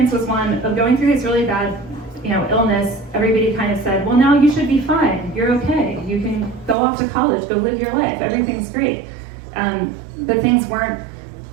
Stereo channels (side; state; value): left; drops out; at 6.8 s